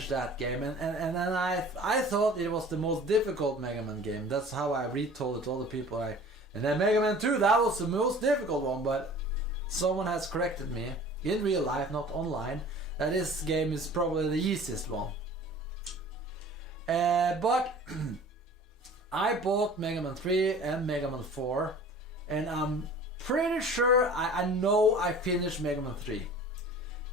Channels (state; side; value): normal; both; correlation 0.45